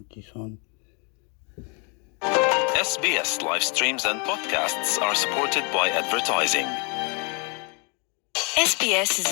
this on. SBS live streams and podcasts are supported by advertising. SBS is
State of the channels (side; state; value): right; quieter; 33.9 dB